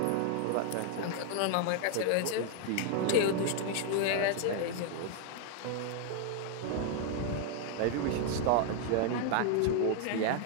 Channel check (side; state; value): both; different; correlation 0.00